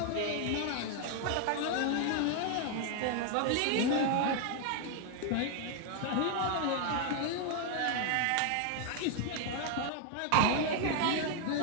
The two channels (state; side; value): different; both; correlation 0.00